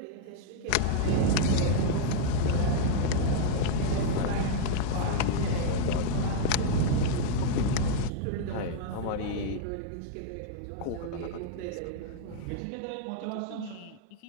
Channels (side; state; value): both; different; correlation -0.01